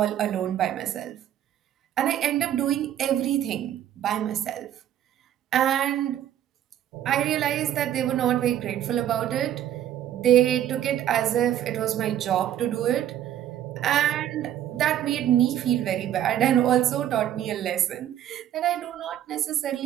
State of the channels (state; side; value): quieter; left; 11.1 dB